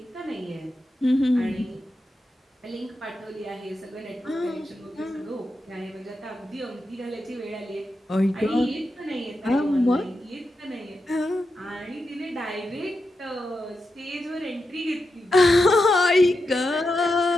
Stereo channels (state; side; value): normal; both; correlation 0.88